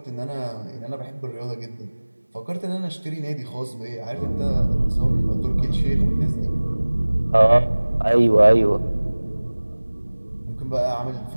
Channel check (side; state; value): both; inverted; correlation -1.00